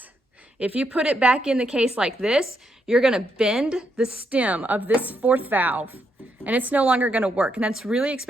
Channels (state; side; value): normal; both; correlation 0.78